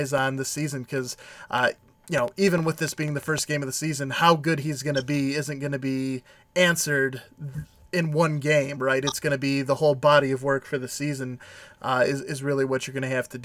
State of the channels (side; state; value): both; identical; correlation 1.00